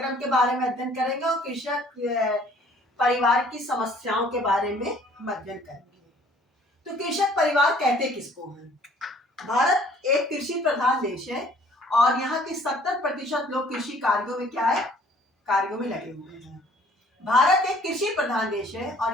के बारे में अध्ययन करेंगे और कृषक परिवार की समस्याओं के बारे में हम अध्ययन करेंगे। तो कृषक परिवार कहते किसको हैं? भारत एक कृषि प्रधान देश है और यहाँ के 70% लोग कृषि कार्यों में क्या है, कार्यों में लगे हुए हैं। भारत एक कृषि प्रधान देश है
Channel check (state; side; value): normal; both; correlation 0.57